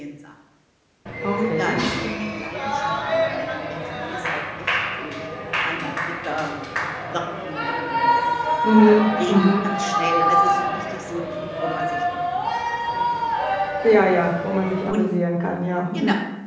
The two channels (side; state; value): both; identical; correlation 1.00